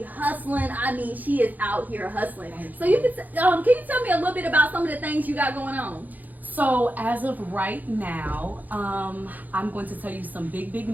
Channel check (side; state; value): left; late; 0.082 ms